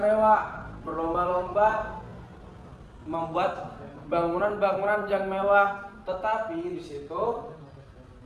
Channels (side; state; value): both; identical; correlation 1.00